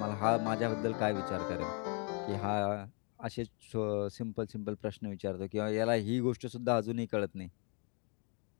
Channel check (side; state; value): right; quieter; 36.5 dB